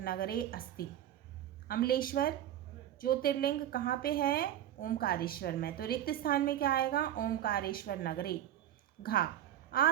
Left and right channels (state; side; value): quieter; left; 11.8 dB